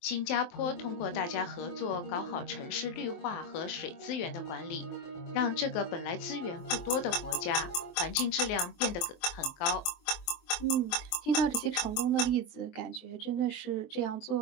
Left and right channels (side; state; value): right; late; 23 ms